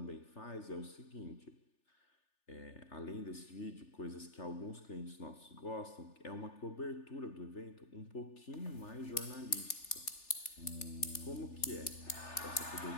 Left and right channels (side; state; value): right; late; 3.4 ms